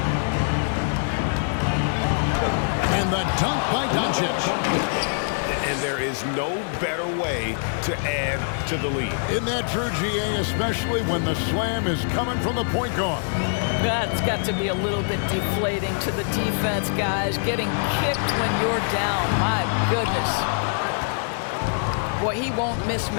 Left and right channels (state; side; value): silent; right; digital silence